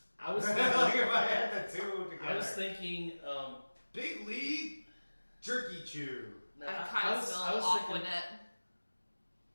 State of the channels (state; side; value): inverted; both; correlation -1.00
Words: I was like thinking. if I had the two together. I was thinking. Big League Jerky Chew. No, I kind of smell I was thinking. Aquanet.